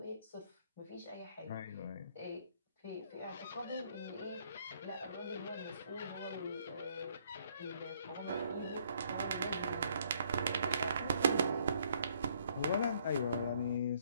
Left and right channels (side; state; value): both; inverted; correlation -0.66